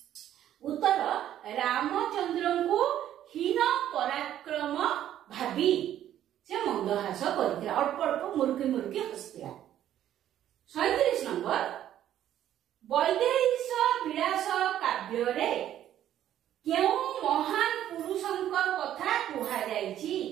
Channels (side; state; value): left; quieter; 11.5 dB